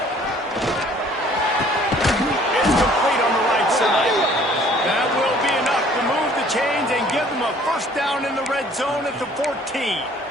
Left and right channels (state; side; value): normal; both; correlation 0.56